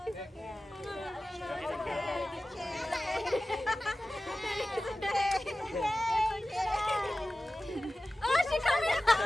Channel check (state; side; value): normal; both; correlation 0.95